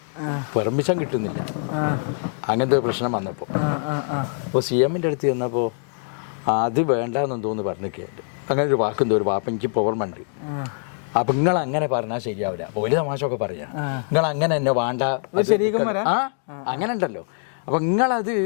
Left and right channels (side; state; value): right; silent; 63 dB below the other